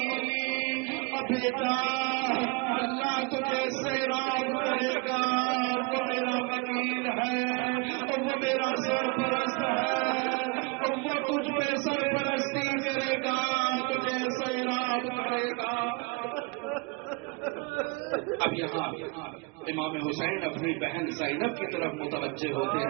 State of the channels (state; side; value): quieter; left; 28.9 dB